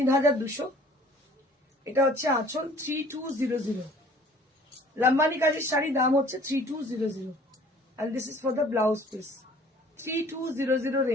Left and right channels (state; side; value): normal; both; correlation 0.52